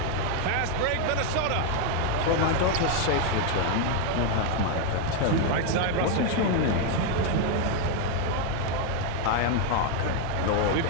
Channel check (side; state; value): both; different; correlation 0.01